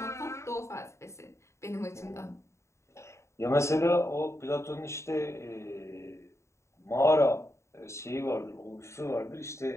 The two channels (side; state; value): right; late; 0.14 ms